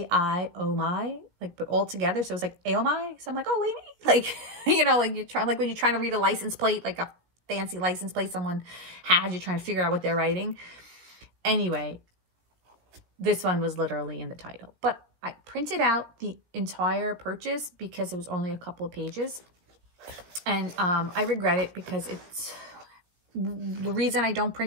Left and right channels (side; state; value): left; late; 17 ms